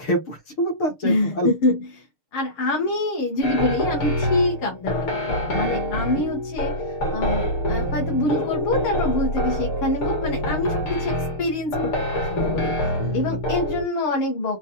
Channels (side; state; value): right; late; 6.6 ms